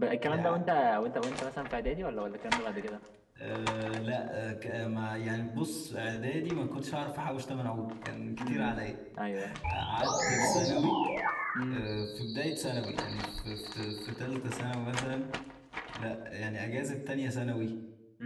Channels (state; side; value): identical; both; correlation 1.00